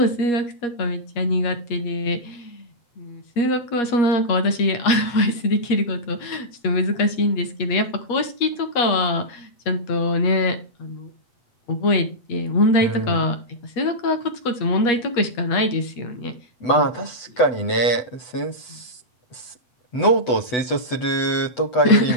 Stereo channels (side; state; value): right; late; 8.0 ms